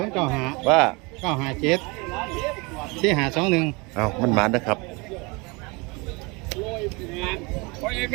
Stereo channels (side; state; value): left; quieter; 27.5 dB